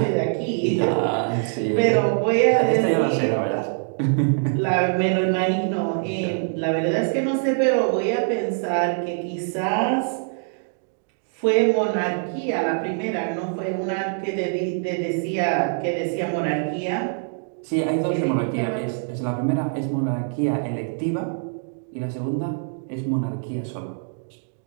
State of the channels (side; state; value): left; silent; digital silence